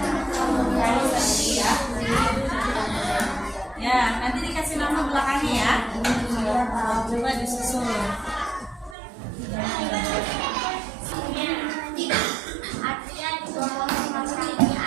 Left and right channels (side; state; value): left; drops out; at 9.0 s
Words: Ya, nanti dikasih nama belakangnya ya. Coba disusun.